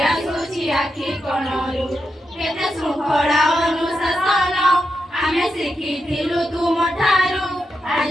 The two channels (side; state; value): both; normal; correlation 0.86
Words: ଆସୁଛି ଆଖି କଣରୁ କେତେ ଶୃଙ୍ଖଳା ଅନୁଶାସନ ଆମେ ଶିଖିଥିଲୁ ତୁମଠାରୁ